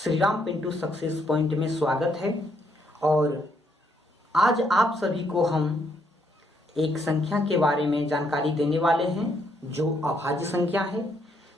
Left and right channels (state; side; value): normal; both; correlation 0.73